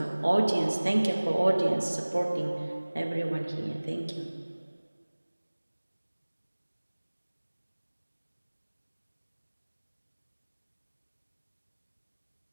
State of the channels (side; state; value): both; inverted; correlation -1.00